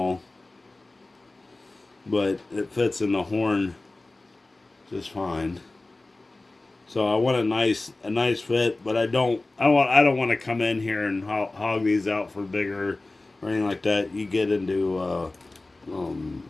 but it fits in the horn just fine. So I want a nice fit, but I don't want to come in here and hog these out for bigger or anything like that. You get into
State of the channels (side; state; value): right; quieter; 3.1 dB